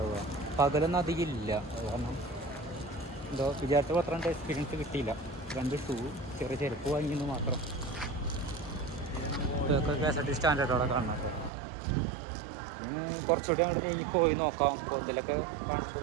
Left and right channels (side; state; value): left; drops out; at 11.5 s